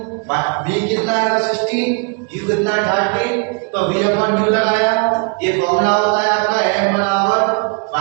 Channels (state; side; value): quieter; left; 36.0 dB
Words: v कितना है 60, u कितना है 30, तो v अपॉन u लगाया। ये फॉर्मूला होता है आपका m बराबर